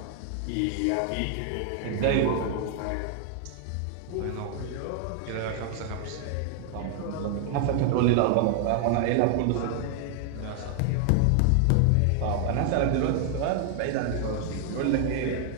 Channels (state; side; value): different; both; correlation 0.00